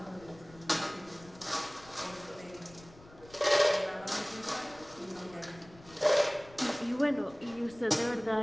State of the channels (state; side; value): noise; left; rumble, 22 dB below the sound